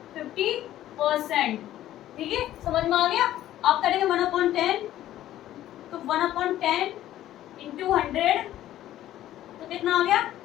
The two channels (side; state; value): right; quieter; 13.2 dB